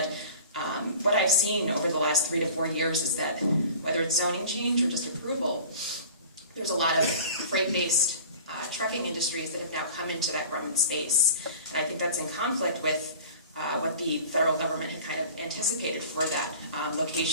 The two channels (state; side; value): inverted; both; correlation -0.42